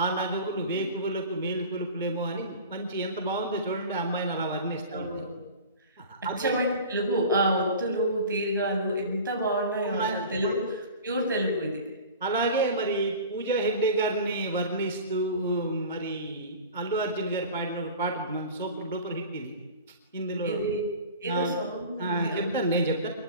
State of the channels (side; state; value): both; inverted; correlation -0.37